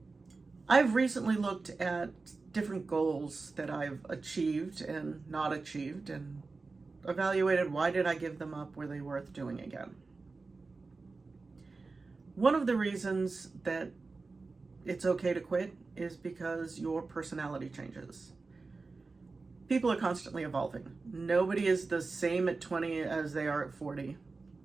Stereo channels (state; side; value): quieter; left; 3.9 dB